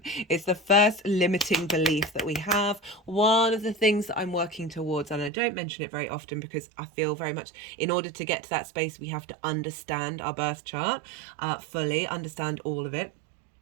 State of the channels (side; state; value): left; drops out; at 5.3 s